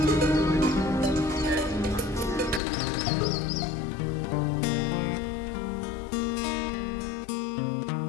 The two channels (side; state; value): right; drops out; at 2.6 s